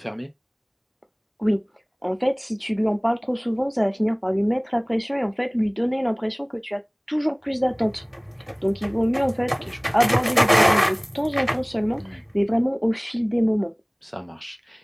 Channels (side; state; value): both; identical; correlation 1.00